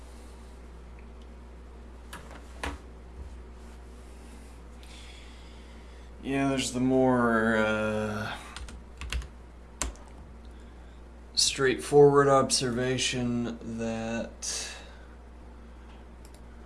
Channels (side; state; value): both; identical; correlation 1.00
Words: Yeah, there's the more straightforward observation that